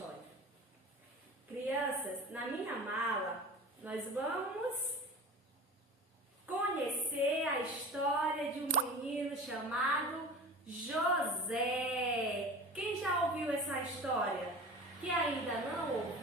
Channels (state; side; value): normal; both; correlation 0.36